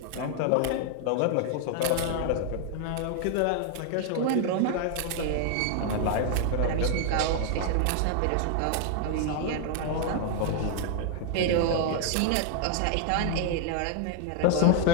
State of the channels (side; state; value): both; different; correlation 0.00